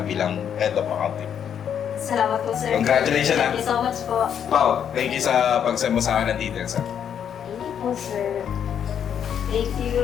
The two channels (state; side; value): quieter; right; 8.6 dB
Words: bilang head of accounting. Salamat po, sir. Congratulations, Thank you so much po. Pao, thank you sa pag-send mo sa akin ng details ha. Thank you po, sir. Thank you.